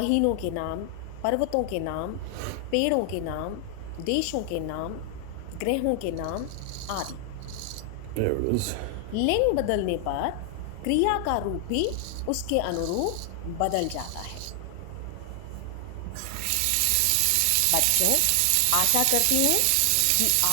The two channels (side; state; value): both; different; correlation 0.00